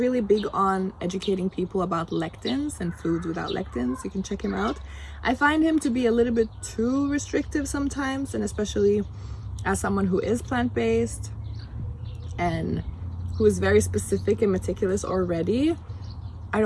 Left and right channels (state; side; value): identical; both; correlation 1.00